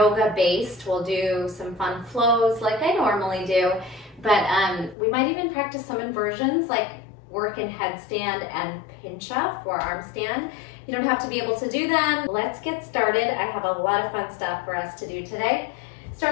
based. We'll do some fun flows like I normally do, but we might even practice some inversions like work in headstand and pinch up, forearm stand. You don't have to be able to do them. Let's get started. I have a lot of fun stuff for us to do today.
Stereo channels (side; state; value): right; drops out; at 5.0 s